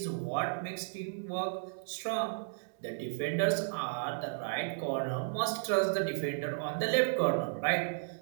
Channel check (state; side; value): silent; left; digital silence